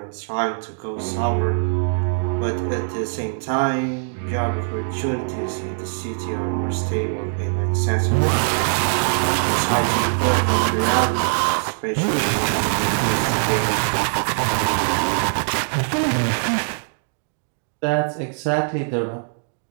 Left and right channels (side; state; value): left; silent; digital silence